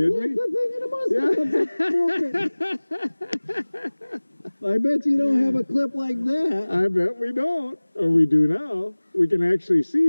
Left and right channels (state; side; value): inverted; both; correlation -1.00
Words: me? I bet you don't have a clip like that. I bet we don't. Or we do now. We can actually